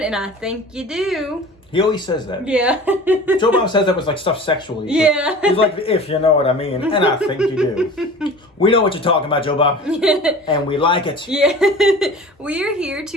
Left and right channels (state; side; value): normal; both; correlation 0.39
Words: and I think you do. He always says that. Yeah. Joe Bob says that was like stuff sexually. Yeah. He's like, if you know what I mean, and I think you do. We know what you're talking about, Joe Bob. And we like it. Yeah. We are here